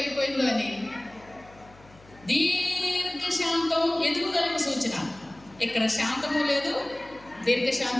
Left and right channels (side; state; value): left; noise; hum, 25 dB below the sound